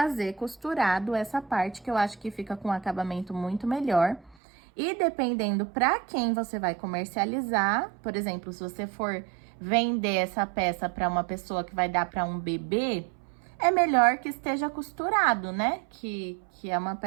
costurado essa parte, que eu acho que fica com um acabamento muito melhor. E dependendo pra quem você vai comercializar, por exemplo, se você for vender essa peça pra uma pessoa que vai dar pra um bebê, é melhor que esteja costurado, né? Que é uma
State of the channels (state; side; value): drops out; left; at 4.4 s